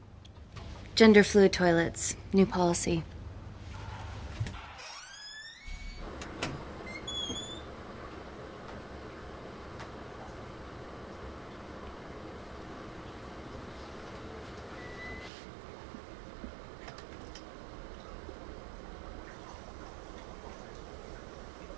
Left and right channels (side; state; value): left; drops out; at 15.3 s